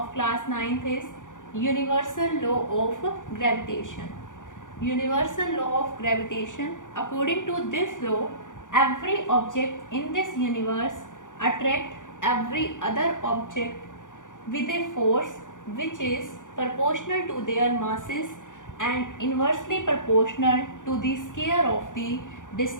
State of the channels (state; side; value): late; right; 0.87 ms